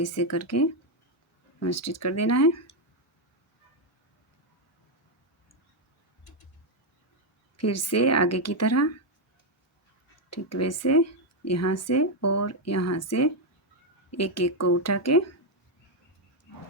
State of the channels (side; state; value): both; normal; correlation 0.02